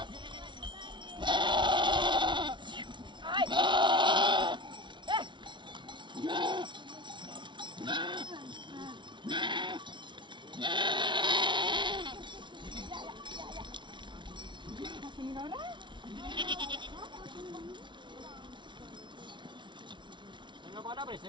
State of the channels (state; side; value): late; left; 0.23 ms